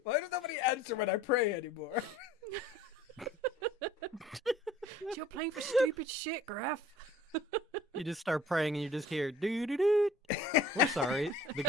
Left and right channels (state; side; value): normal; both; correlation 0.50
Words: Why does nobody answer when I pray anymore? You're playing for stupid shit, Graf. You just start praying and you just hear doo doo doo. We're sorry. The